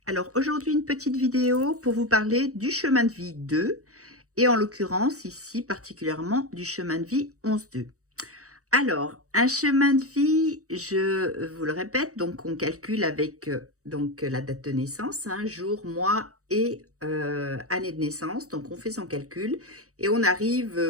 Alors aujourd'hui une petite vidéo pour vous parler du chemin de vie 2 et en l'occurrence ici particulièrement du chemin de vie 11-2. Alors un chemin de vie, je vous le répète, donc on calcule avec la date de naissance, jour, mois et année de naissance. Donc on fait son calcul et on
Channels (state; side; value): late; left; 0.65 ms